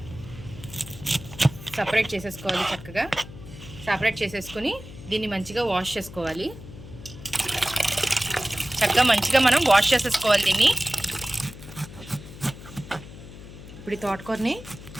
సపరేట్ చేసేసుకోవాలి. చక్కగా సపరేట్ చేసేసుకుని దీన్ని మంచిగా వాష్ చేసుకోవాలి. చక్కగా మంచిగా మనం వాష్ చేసేసుకోవాలి దీన్ని. ఇప్పుడు ఈ తోటకూరని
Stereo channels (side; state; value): left; noise; hum, 15 dB below the sound